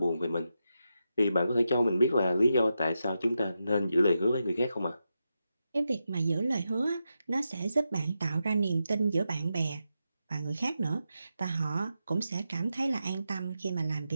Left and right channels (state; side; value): inverted; both; correlation -0.87